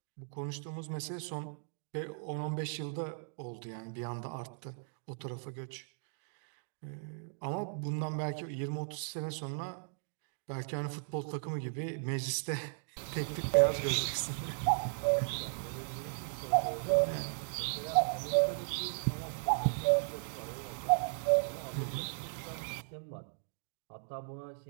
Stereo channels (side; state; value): left; silent; digital silence